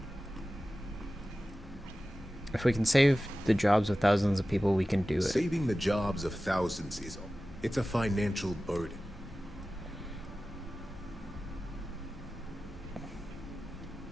If we can save the jobs of thousands of people, we can do it. Saving the jobs of thousands is... It's a financial burden.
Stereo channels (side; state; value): both; normal; correlation 0.96